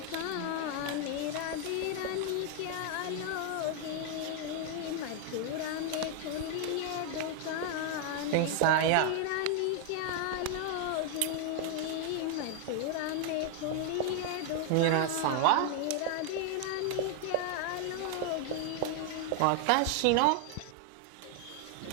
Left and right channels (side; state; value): both; different; correlation 0.00